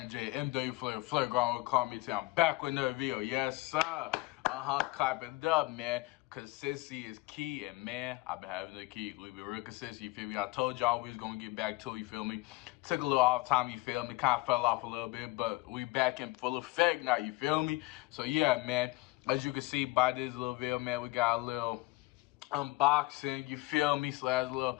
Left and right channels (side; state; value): right; quieter; 21.8 dB